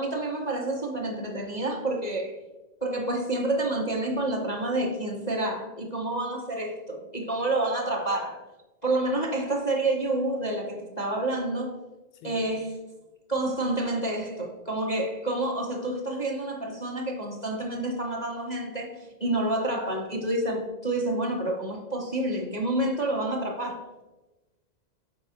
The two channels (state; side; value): late; right; 2.0 ms